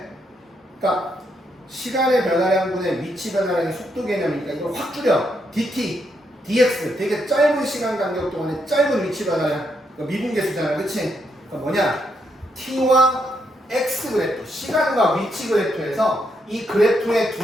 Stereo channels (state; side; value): normal; both; correlation 0.78